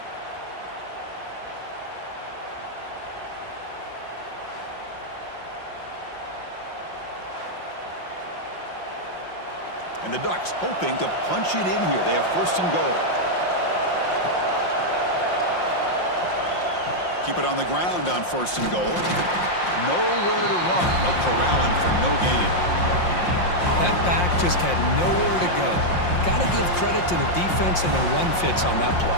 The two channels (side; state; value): right; late; 5.7 ms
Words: And the Ducks hoping to punch it in here. They have first and goal. Keep it on the ground on first and goal. Nowhere to run. They'll corral him for no gain. That back just had nowhere to go. Got to give credit to the defense and their run fits on that play.